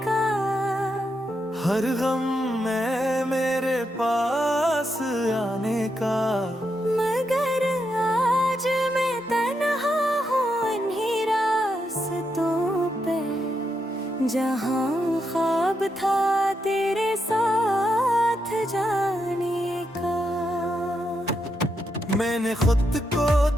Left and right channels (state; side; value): normal; both; correlation 0.82